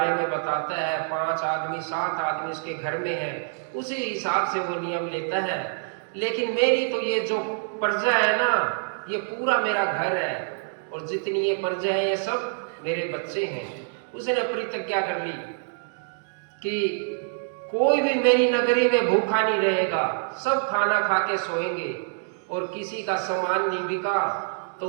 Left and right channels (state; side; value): silent; left; digital silence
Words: में बताता है, 5 आदमी 7 आदमी उसके घर में है, उसी हिसाब से वो नियम लेता है। लेकिन मेरी तो ये जो प्रजा है ना, ये पूरा मेरा घर है, और जितनी ये प्रजा है ये सब मेरे बच्चे हैं। उसने प्रतिज्ञा कर ली कि कोई भी मेरी नगरी में भूखा नहीं रहेगा, सब खाना खा के सोएंगे, और किसी का सामान नहीं बिका तो